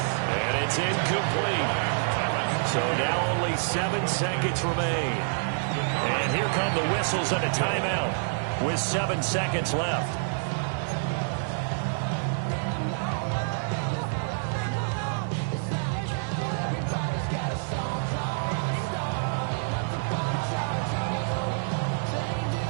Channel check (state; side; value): silent; left; digital silence